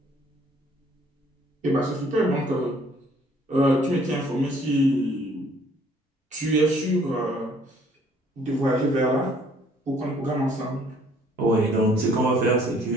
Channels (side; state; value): both; normal; correlation 0.60